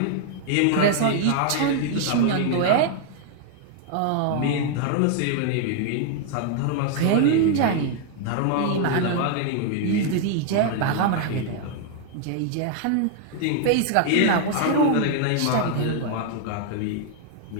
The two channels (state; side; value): different; both; correlation 0.00